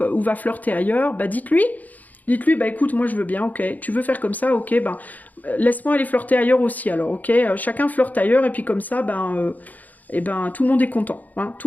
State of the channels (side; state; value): right; late; 0.080 ms